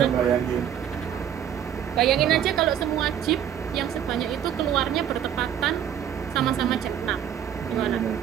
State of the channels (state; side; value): quieter; left; 9.6 dB